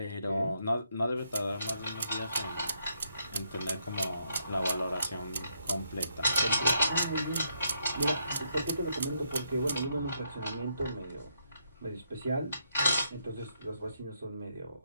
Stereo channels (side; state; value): both; inverted; correlation -0.76